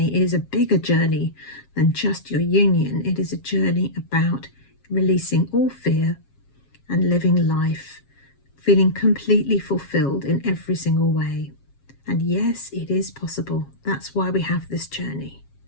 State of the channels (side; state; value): right; late; 7.4 ms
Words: is a bigger journey than just your union. It is a journey about releasing all fear and living life, feeling completely fulfilled in every single way. And yes, it is possible. That's why we have this journey.